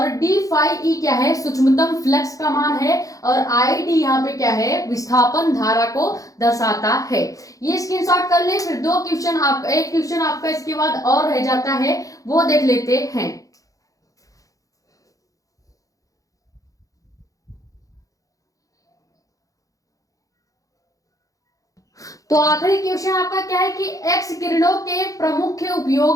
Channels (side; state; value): right; late; 0.17 ms